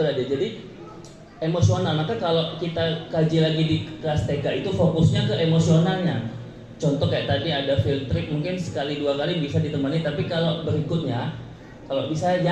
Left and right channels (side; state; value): both; identical; correlation 1.00